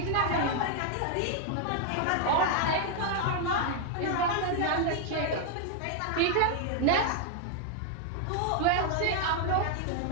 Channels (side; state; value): both; different; correlation 0.00